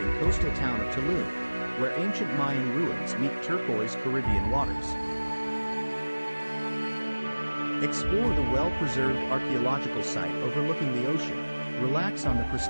coastal town of Tulum, where ancient Mayan ruins meet turquoise Caribbean waters. Explore the well-preserved archaeological site overlooking the ocean, relax on the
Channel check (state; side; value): inverted; both; correlation -1.00